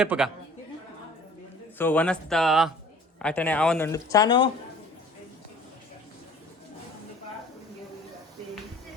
ಸೊ ವನಸ್ತ ಆಟನೆ ಅವನೊಂದು ಚಾನು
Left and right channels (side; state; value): both; normal; correlation 0.49